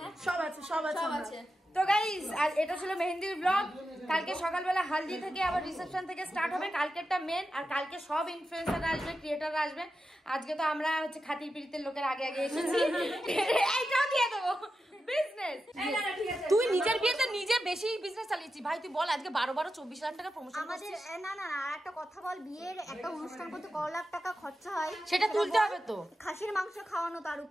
সব আছে। আছে। তো তো গাইস আর এটা ছিল মেহেন্দির ব্লগ। কালকে সকালবেলা হালদি থেকে আবার রিসেপশন থেকে স্টার্ট হবে, কালকেরটা মেন। আর কালকে সব ইনফ্লুয়েন্সাররা আসবে, ক্রিয়েটররা আসবে। আজকে তো আমরা হচ্ছে খাতির পিড়িতের লোকের আগে আগে এসেছি। এইটাও দিয়ে দেবো বিজনেস। তুই নিজের বিয়েতে নিজে বেশি বিজনেস চালিয়েছি ভাই। তুই বল আজকে 12-24 লাখ টাকা প্রমোশন আমাদের না না না একটা কথা বল, বিয়ের একটা অনুষ্ঠান করতে কত লাখ টাকা খরচা হয় সেটা তুলতে হবে তো। খাসির মাংস খাওয়ানো তার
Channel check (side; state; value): both; normal; correlation 0.90